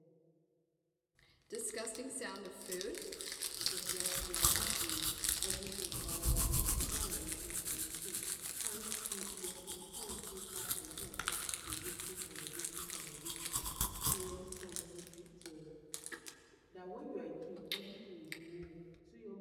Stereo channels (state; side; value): identical; both; correlation 1.00